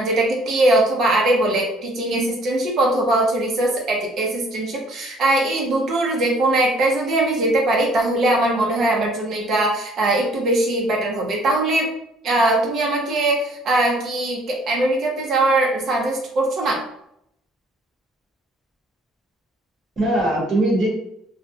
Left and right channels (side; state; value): both; normal; correlation 0.58